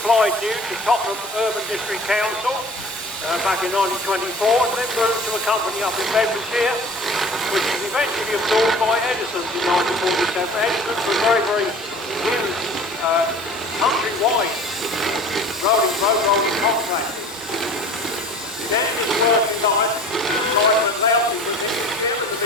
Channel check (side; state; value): both; normal; correlation 0.44